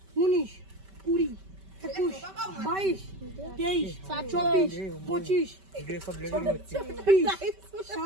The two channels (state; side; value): late; left; 5.2 ms